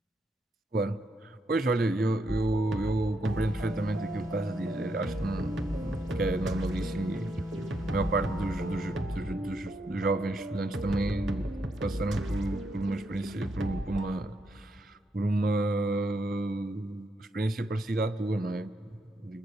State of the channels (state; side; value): normal; both; correlation 0.79